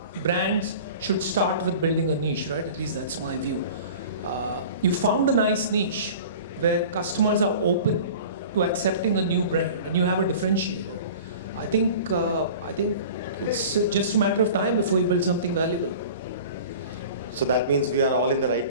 brands should start with building a niche, right? At least that's my view. You found a nice niche where customers are open to accepting a new brand and you have a differentiator. I think it's just a matter of time before you build something valuable. So that means we are all in the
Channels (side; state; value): both; inverted; correlation -0.40